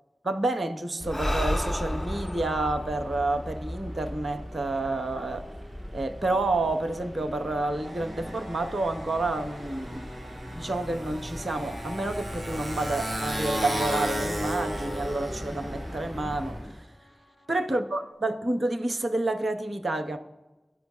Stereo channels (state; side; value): normal; both; correlation 0.89